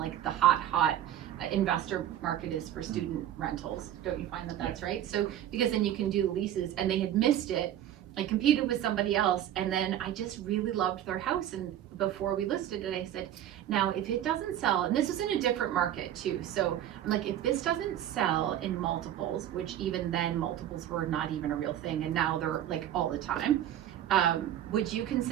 the hot investor market is for student rentals. Don't you find that that's right? So because then you can do leases, and they had missed it. I competed with somebody else, and then I just really loved their house, and before we listed it, I said, now if it doesn't sell, and this is in a different market too, so I'm like, if this doesn't sell in multiples, which even then multiples were not even a real thing, and now they're like all the time, would you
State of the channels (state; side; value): quieter; left; 11.5 dB